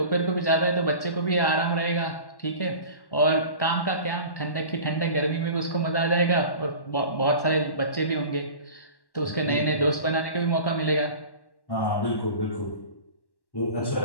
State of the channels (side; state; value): right; late; 1.1 ms